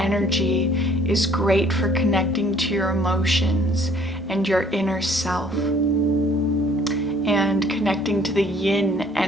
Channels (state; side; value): normal; both; correlation 0.59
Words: is great for connecting to your emotions and your inner self, and connecting to the yin